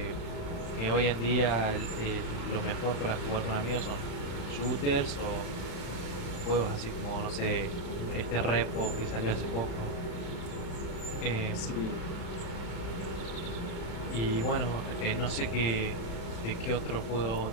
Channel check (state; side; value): late; right; 35 ms